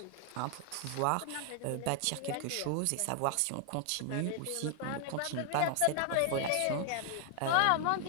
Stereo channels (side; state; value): both; different; correlation 0.00